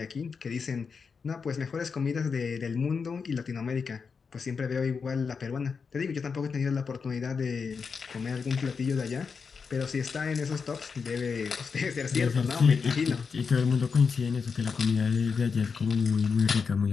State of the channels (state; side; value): quieter; right; 5.5 dB